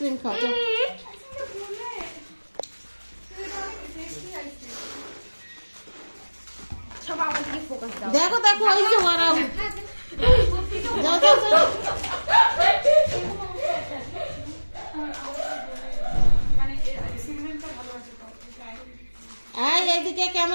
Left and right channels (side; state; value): both; inverted; correlation -1.00